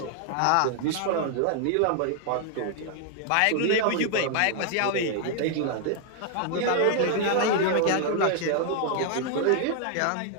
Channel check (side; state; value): both; different; correlation 0.00